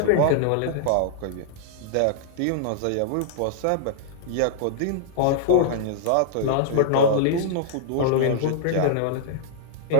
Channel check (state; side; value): different; both; correlation -0.01